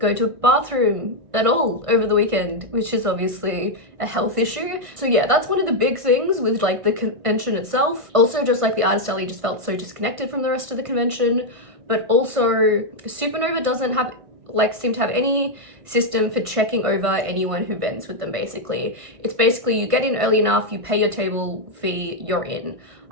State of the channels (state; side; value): late; left; 1.5 ms